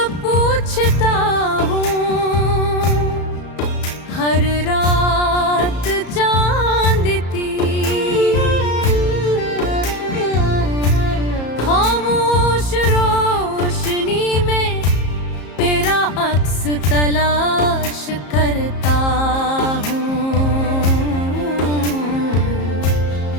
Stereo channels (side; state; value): right; late; 34 ms